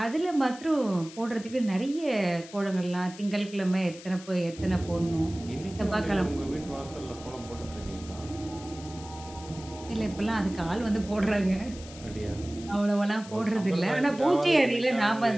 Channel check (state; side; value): noise; left; hiss, 17 dB below the sound